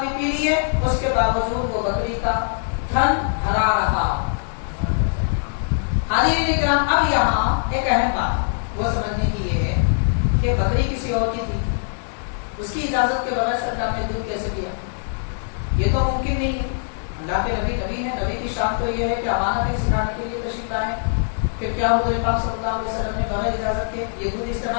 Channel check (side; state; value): right; silent; digital silence